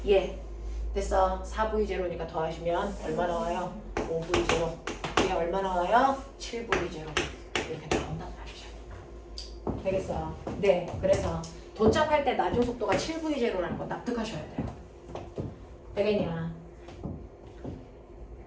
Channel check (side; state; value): both; identical; correlation 1.00